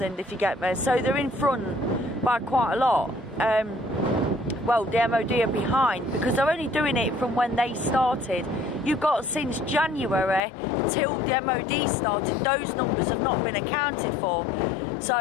if you get me. So they're in front by quite a lot. Well, the MOD are behind because they're only doing it from when they started. You've got since January till the MOD started, those numbers have not been accounted for. So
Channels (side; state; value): right; drops out; at 10.4 s